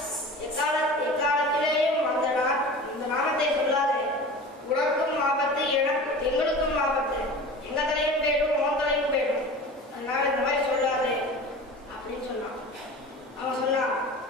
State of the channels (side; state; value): both; normal; correlation 0.36